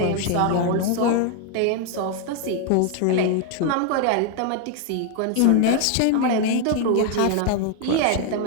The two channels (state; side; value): different; both; correlation 0.00